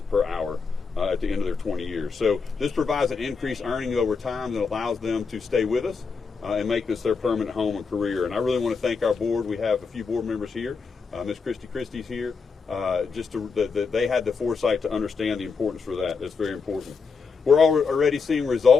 per hour at the end of their 20 years. So this provides an increased earning over time that allows them to stay with us and make this their permanent home and career. And I really want to thank our board. We have a few board members here. Ms. Christie's here. They had the foresight to understand the importance for that. That's very important. We're already seeing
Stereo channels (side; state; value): right; quieter; 5.1 dB